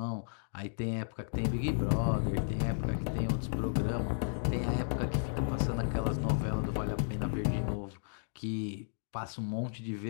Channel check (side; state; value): right; silent; digital silence